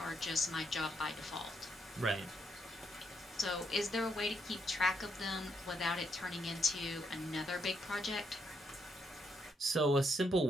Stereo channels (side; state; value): both; normal; correlation 0.77